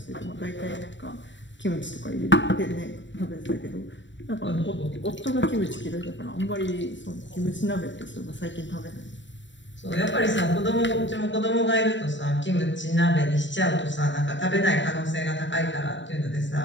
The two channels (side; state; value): right; late; 0.54 ms